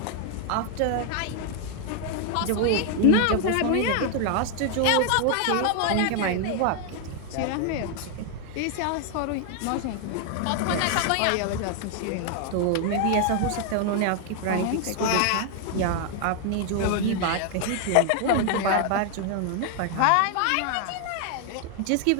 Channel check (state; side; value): different; both; correlation 0.00